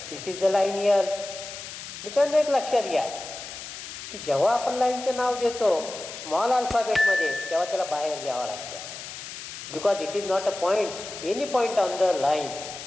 This is the line L. मित्रांनो, एक लक्षात घ्या की जेव्हा आपण लाईनचं नाव देतो स्मॉल अल्फाबेटमध्ये तेव्हा त्याला बाहेर लिहावं लागतं, because it is not a point, any point on the line.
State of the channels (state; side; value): noise; left; hiss, 11 dB below the sound